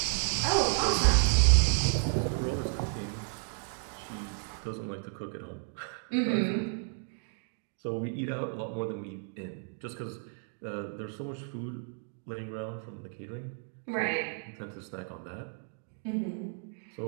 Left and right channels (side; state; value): left; silent; 56 dB below the other